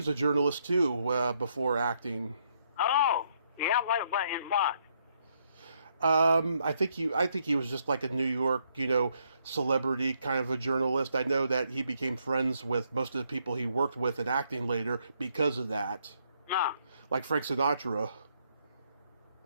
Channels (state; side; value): inverted; both; correlation -0.73